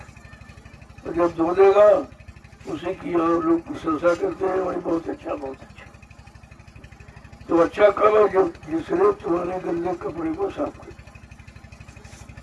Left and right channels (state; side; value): identical; both; correlation 1.00